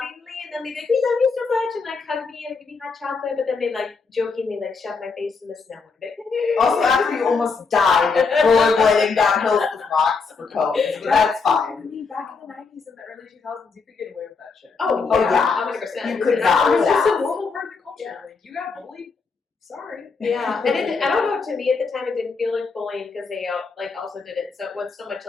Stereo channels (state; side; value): quieter; right; 4.8 dB